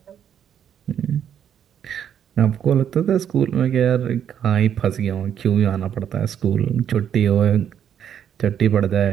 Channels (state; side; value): quieter; left; 9.1 dB